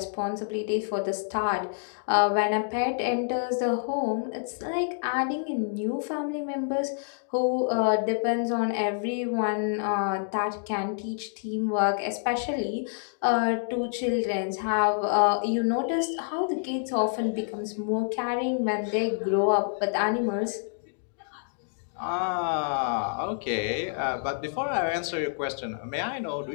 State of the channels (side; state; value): right; silent; digital silence